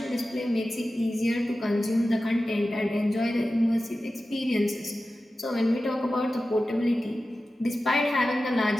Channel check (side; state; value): both; normal; correlation 0.94